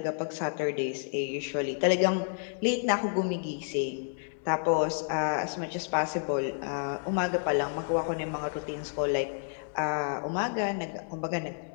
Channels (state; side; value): silent; right; digital silence